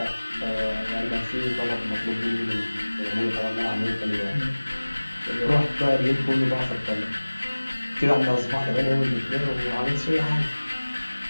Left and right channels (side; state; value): both; inverted; correlation -1.00